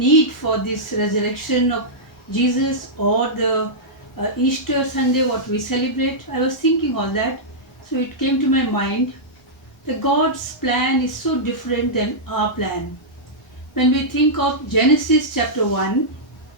for this resurrection of Jesus or the Easter Sunday, what we celebrate. I was thinking all that, so it came to my mind. The God's plan is so different than our plan. When we think of Genesis chapter 1,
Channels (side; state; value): both; normal; correlation -0.11